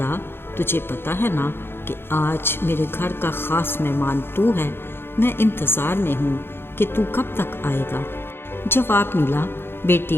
तुझे पता है ना कि आज मेरे घर का ख़ास मेहमान तू है। मैं इंतज़ार में हूँ कि तू कब तक आएगा। जवाब मिला,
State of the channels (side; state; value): right; late; 0.11 ms